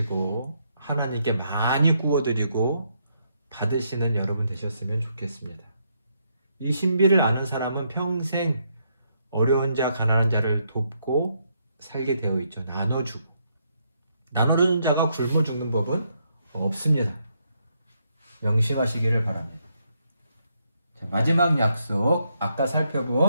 하나님께 많이 구워드리고 받으시는 여러분 되셨으면 좋겠습니다. 이 신비를 아는 사람은 평생 어려운 자, 가난한 자를 돕고 살게 되어 있죠. 나눠주고. 나누는 자가 굶어 죽는 법은 없습니다. 명심하시기를 바랍니다. 자, 마지막 약속, 아까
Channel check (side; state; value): both; inverted; correlation -0.76